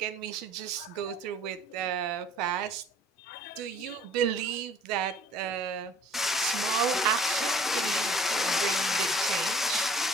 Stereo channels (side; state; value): both; normal; correlation 0.53